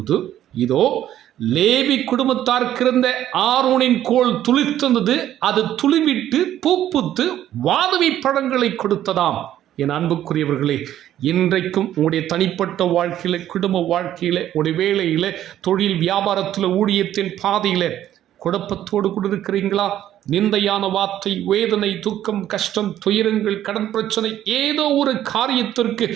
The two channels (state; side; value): quieter; left; 11.9 dB